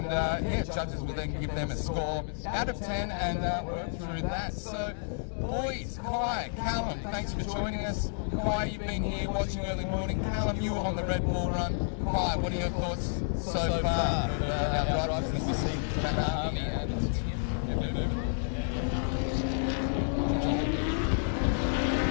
yeah, judges will then give them a score out of 10 and work through that. So, boys, Kai, Callum, thanks for joining us. Kai, you've been here watching early morning. Callum, you were on the Red Bull run. Kai, what are your thoughts so far? Our drivers, Mr. C, Matt Harvey, and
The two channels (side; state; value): right; silent; digital silence